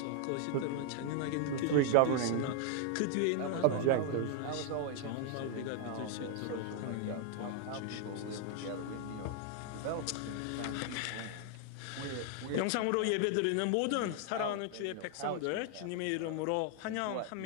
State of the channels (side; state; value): both; different; correlation 0.00